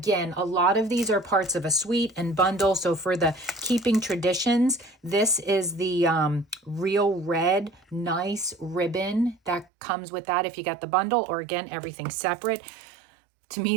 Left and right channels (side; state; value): left; drops out; at 9.7 s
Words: a lot of these are parts of a suite and bundle. So for the Keeping Traditions, this is the real red, nice ribbon that comes with that if you got the bundle, or again, everything separate. To me,